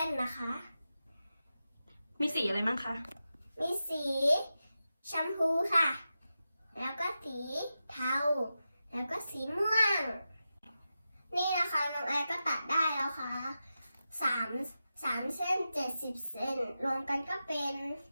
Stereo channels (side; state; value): both; inverted; correlation -0.91